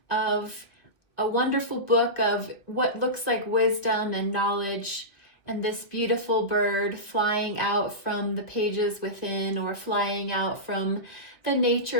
of a wonderful book of what looks like wisdom and knowledge, and this beautiful bird flying out from the pages within, or flying out from the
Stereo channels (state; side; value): late; right; 1.9 ms